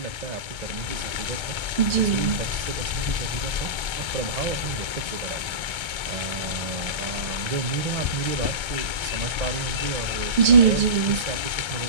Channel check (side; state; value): left; late; 1.3 ms